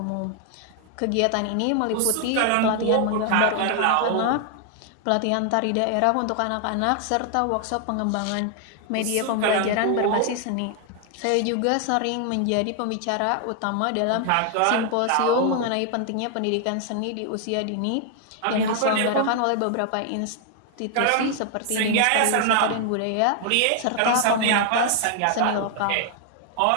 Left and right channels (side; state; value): both; different; correlation 0.00